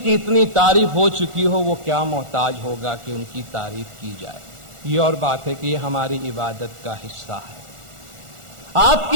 کی اتنی تعریف ہو چکی ہو وہ کیا محتاج ہوگا کہ ان کی تعریف کی جائے؟ یہ اور بات ہے کہ یہ ہماری عبادت کا حصہ ہے۔ آپ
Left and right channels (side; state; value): left; late; 1.4 ms